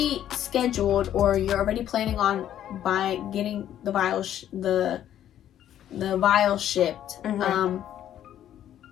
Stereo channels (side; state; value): right; quieter; 11.1 dB